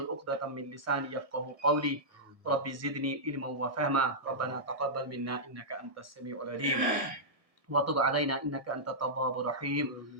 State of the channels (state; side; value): late; left; 1.7 ms